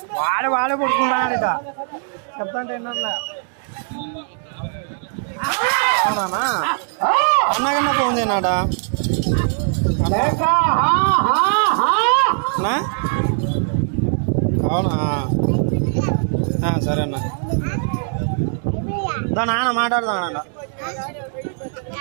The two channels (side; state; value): left; silent; 60 dB below the other